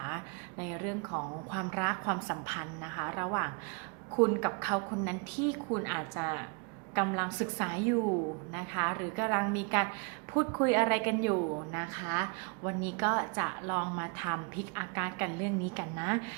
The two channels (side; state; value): left; quieter; 34.5 dB